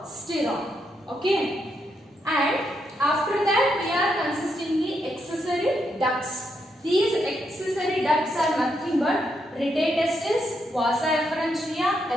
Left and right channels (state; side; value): normal; both; correlation 0.80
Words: Okay. And after that we are consisting the accessory ducts. These accessory ducts are nothing but rete testis, vasa efferentia,